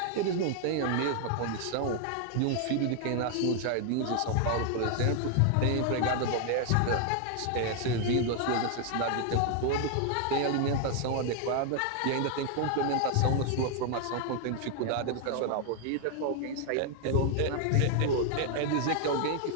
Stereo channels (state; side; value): different; both; correlation 0.00